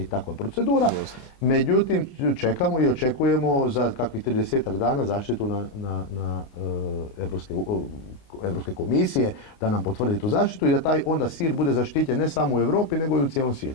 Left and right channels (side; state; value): right; late; 29 ms